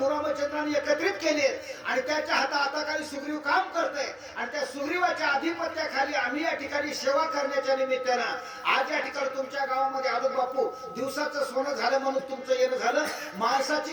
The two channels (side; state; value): both; identical; correlation 1.00